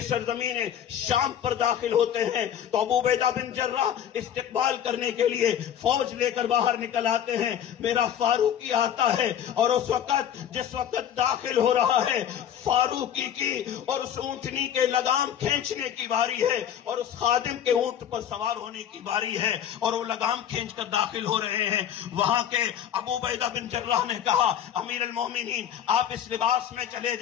سرزمین شام پر داخل ہوتے ہیں تو ابو عبیدہ بن جراح استقبال کرنے کے لیے فوج لے کر باہر نکل آتے ہیں، میرا فاروقی آتا ہے اور اس وقت جس وقت داخل ہو رہا ہے فاروقی کی اور اس اونٹنی کے لگام کھینچنے کی باری ہے اور اس خادم کے اونٹ پر سوار ہونے کی باری ہے اور وہ لگام کھینچ کر داخل ہو رہے ہیں۔ وہاں کے ابو عبیدہ بن جراح نے کہا امیر المومنین آپ اس لباس میں چلے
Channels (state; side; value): quieter; right; 9.7 dB